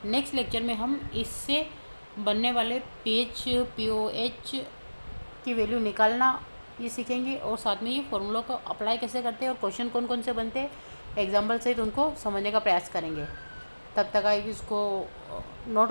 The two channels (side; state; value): both; inverted; correlation -1.00